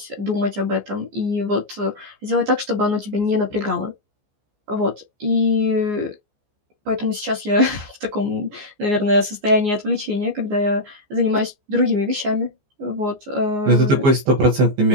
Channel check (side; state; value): left; late; 14 ms